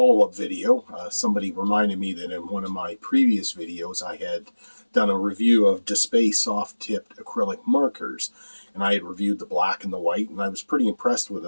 video. Somebody reminded me that in one of my previous videos I had done a review of Dspiae soft-tipped acrylic markers, and I had reviewed the black and the white, and I was pretty impressed with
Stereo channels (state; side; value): inverted; both; correlation -1.00